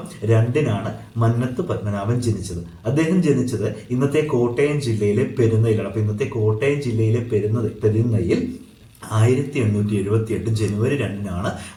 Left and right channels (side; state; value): both; identical; correlation 1.00